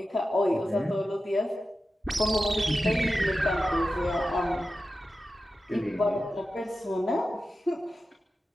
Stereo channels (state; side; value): normal; both; correlation 0.92